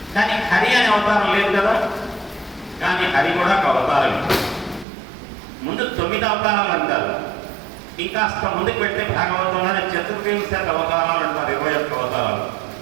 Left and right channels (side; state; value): left; drops out; at 4.9 s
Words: కానీ హరి అనే అవతారం లేదు కదా. కానీ హరి కూడా ఒక అవతారం. ముందు 9 అవతారాలు అంటారు. ఇంకాస్త ముందుకు వెళ్తే భాగవతంలోనే చతుర్వింశతి అవతారాలు అంటారు, 21 అవతారాలు.